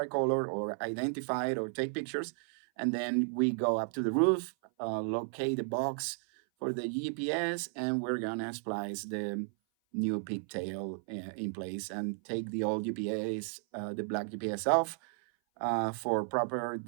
color, or identify it, or take pictures. And then we go up to the roof, locate the box for the GPS, and we're gonna splice the new pigtail in place and take the old GPS, the black GPS off for proper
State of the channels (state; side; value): silent; left; 55 dB below the other